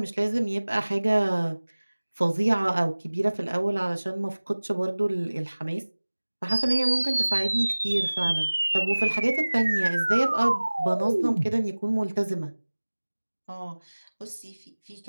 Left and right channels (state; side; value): inverted; both; correlation -1.00